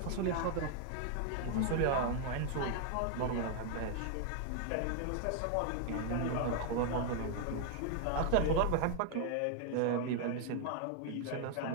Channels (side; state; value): both; different; correlation 0.00